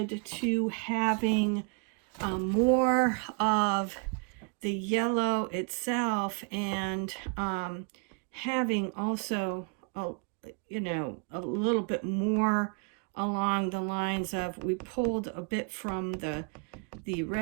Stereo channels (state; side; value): quieter; left; 37.4 dB